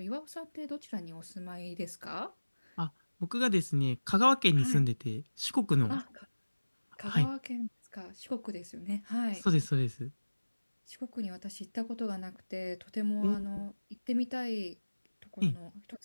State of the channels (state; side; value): inverted; both; correlation -1.00